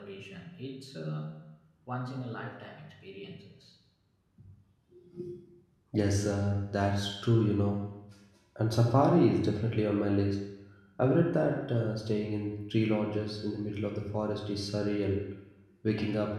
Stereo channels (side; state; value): both; identical; correlation 1.00